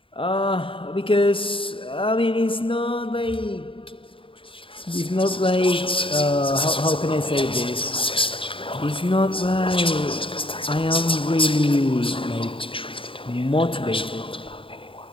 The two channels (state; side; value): late; right; 0.25 ms